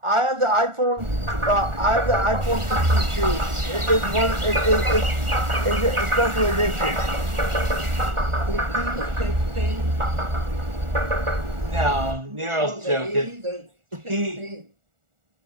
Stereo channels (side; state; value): left; late; 1.4 ms